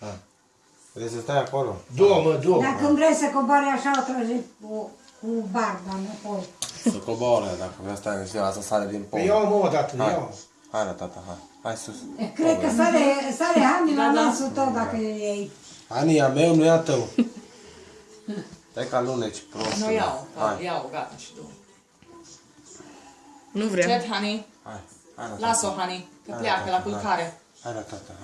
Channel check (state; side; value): identical; both; correlation 1.00